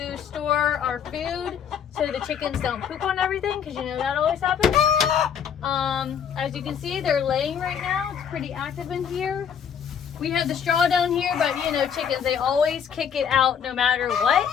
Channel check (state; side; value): quieter; right; 7.9 dB